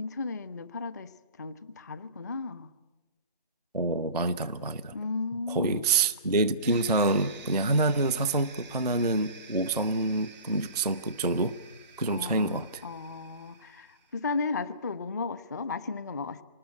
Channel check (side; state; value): both; inverted; correlation -0.39